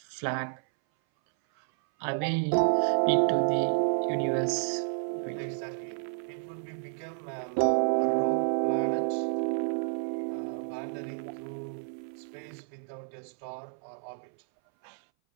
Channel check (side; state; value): left; silent; 58 dB below the other